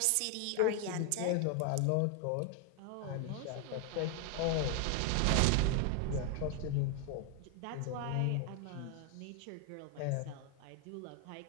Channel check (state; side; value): different; both; correlation 0.01